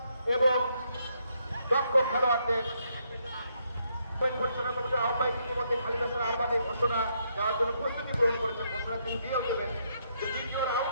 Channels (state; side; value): inverted; both; correlation -0.75